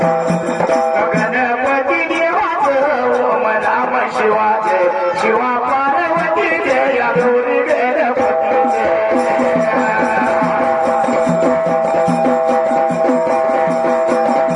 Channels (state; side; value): identical; both; correlation 1.00